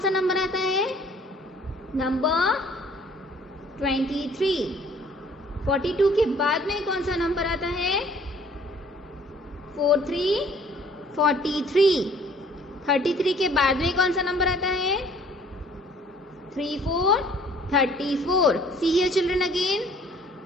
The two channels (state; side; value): normal; both; correlation 0.56